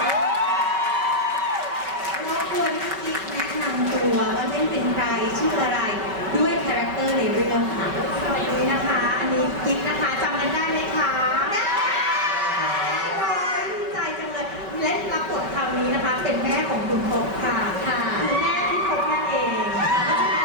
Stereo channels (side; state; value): left; late; 5.2 ms